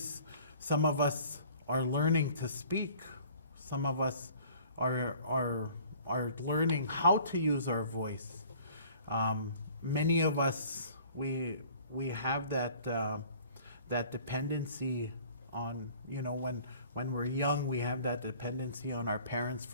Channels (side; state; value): both; inverted; correlation -0.51